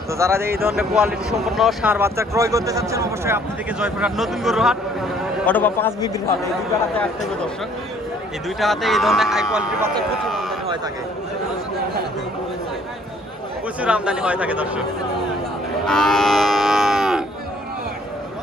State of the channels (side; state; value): both; normal; correlation 0.60